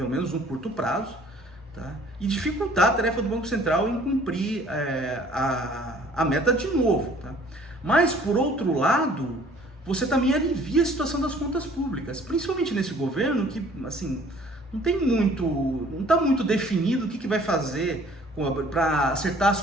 menos no curto prazo. Tá? E dificultar a tarefa do Banco Central em cumprir a meta de novo. Tá? Mas, por outro lado, você também alivia a situação das contas públicas, principalmente nesse governo que assim, não está muito definido o que vai fazer para acertar as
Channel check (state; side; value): normal; both; correlation 0.55